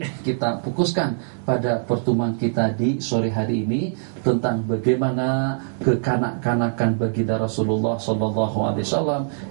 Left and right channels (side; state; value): left; silent; digital silence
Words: kita fokuskan pada pertemuan kita di sore hari ini tentang bagaimana kekanak-kanakan baginda Rasulullah SAW